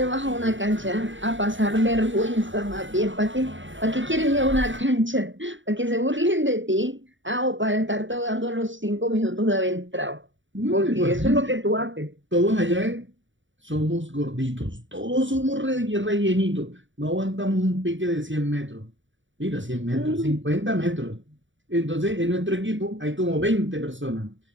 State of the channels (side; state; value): left; late; 0.55 ms